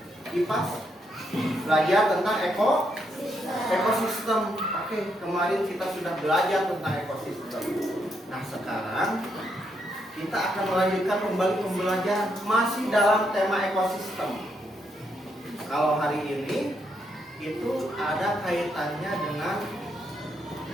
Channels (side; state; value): both; normal; correlation 0.78